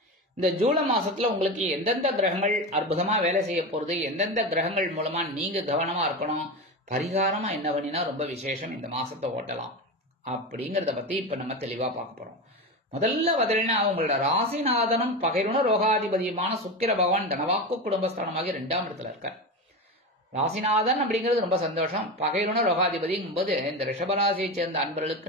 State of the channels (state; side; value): normal; both; correlation 0.21